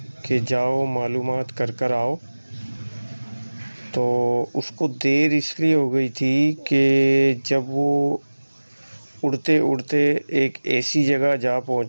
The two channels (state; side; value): inverted; both; correlation -1.00